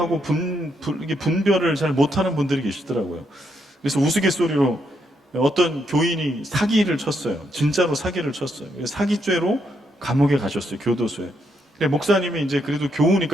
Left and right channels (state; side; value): normal; both; correlation 0.77